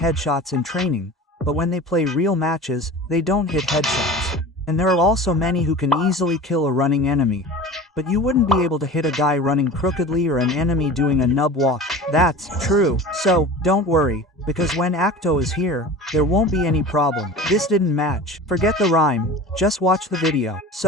in training, but when they play real matches, they don't hit headshots. And there are also many who can easily kill a running enemy. But you wouldn't be able to hit a guy running crookedly or an enemy doing a nub walk. That's true. So, don't worry, because when Acto is here, there won't be any problem. This didn't match. Forget the rhyme, just watch the video.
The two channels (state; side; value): normal; both; correlation 0.36